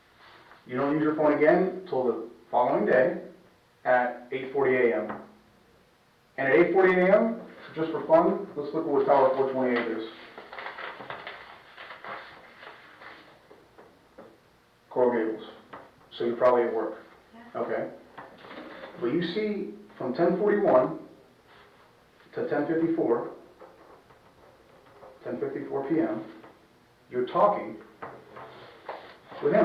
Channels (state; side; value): identical; both; correlation 1.00